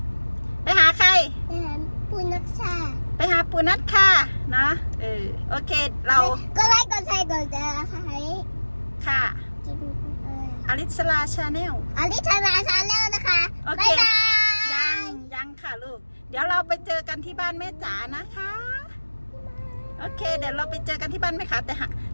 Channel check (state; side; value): inverted; both; correlation -1.00